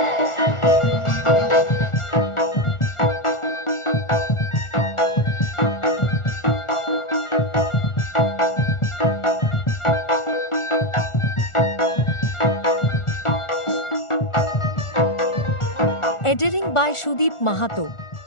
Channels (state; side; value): late; right; 1.4 ms